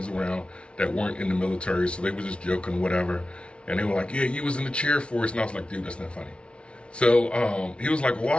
around that weren't in the military, so they were just joking, whatever. And they were like, yeah, you was in the cheer force. And I was like, dude, that's not funny. So he was like,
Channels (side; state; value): right; late; 0.059 ms